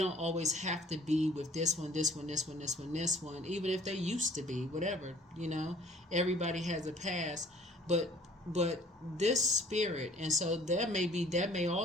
always have to be with this one, even if they used to be, whatever, everybody has a past, but this spirit, and so that may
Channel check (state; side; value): normal; both; correlation 0.53